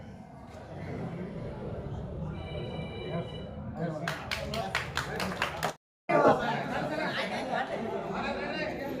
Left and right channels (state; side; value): identical; both; correlation 1.00